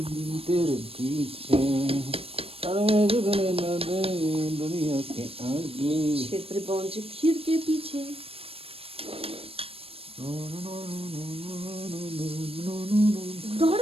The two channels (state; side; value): late; left; 0.28 ms